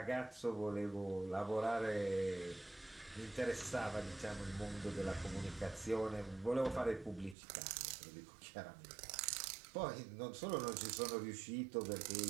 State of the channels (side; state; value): left; drops out; at 7.4 s